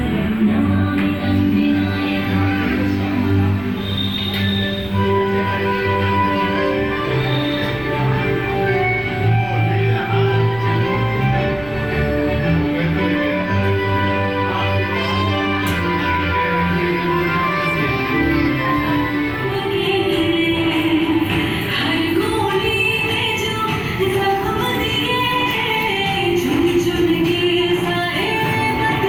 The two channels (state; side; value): noise; right; rumble, 18 dB below the sound